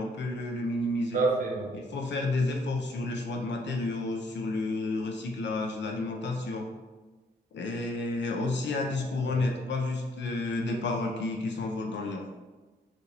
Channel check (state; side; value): normal; both; correlation 0.66